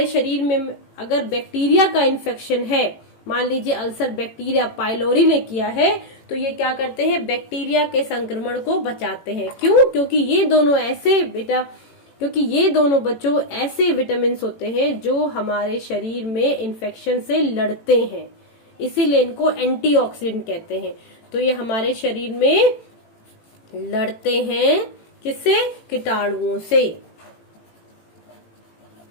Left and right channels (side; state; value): right; late; 18 ms